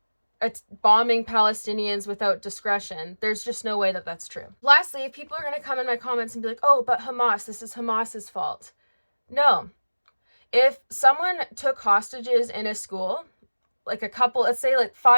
bombing Palestinians without discretion, there's just no way that that's true. Lastly, if people are going to come in my comments and be like, oh, but Hamas, this is Hamas's fault. No. If someone took hostages in a school, like a couple, let's say like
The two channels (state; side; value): inverted; both; correlation -1.00